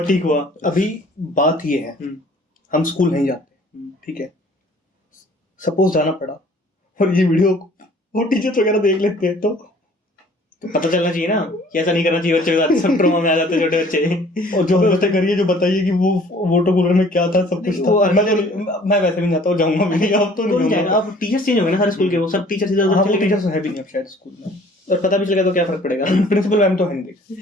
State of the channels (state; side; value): normal; both; correlation 0.54